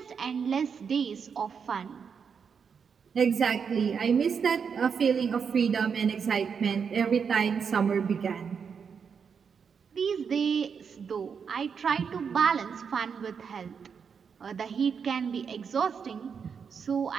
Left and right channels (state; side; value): quieter; left; 6.4 dB